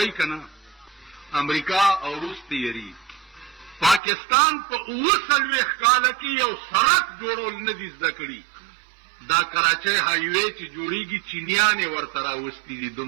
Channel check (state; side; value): drops out; left; at 4.0 s